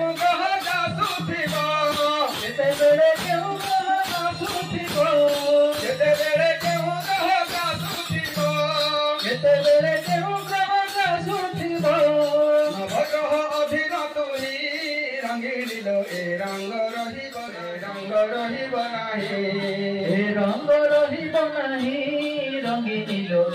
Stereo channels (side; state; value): both; identical; correlation 1.00